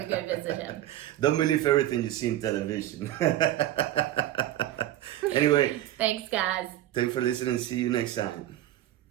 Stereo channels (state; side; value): quieter; left; 13.6 dB